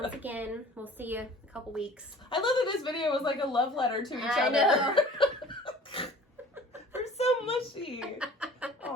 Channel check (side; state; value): both; normal; correlation 0.46